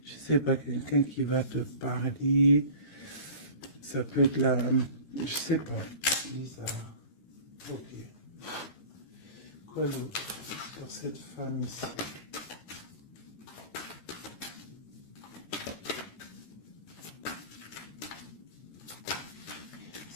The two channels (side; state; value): right; late; 13 ms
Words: je sais pas, quelqu'un qui va te parler, ça peut être là, je sais pas, bizarre. Ok. Quoi d'autre sur cette femme ici?